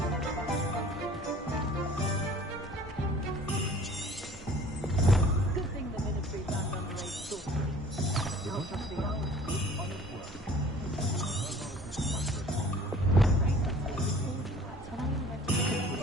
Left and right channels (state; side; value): normal; both; correlation 0.49